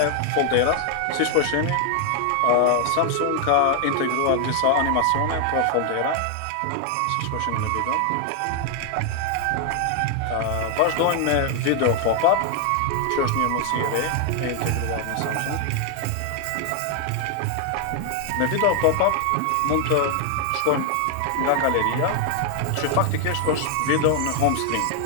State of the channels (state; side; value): different; both; correlation 0.00